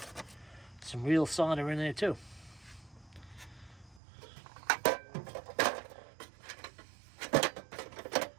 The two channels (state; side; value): drops out; left; at 4.0 s